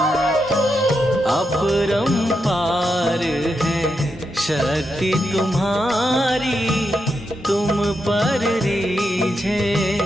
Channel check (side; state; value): both; normal; correlation 0.84